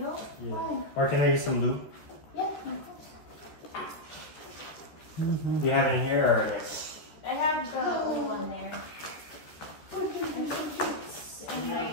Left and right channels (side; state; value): right; late; 13 ms